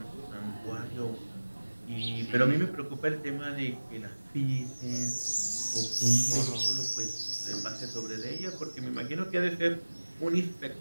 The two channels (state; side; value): inverted; both; correlation -1.00